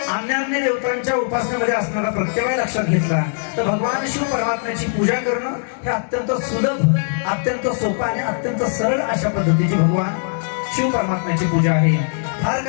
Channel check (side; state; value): right; silent; digital silence